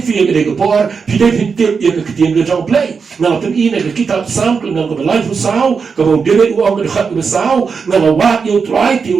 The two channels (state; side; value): quieter; left; 5.5 dB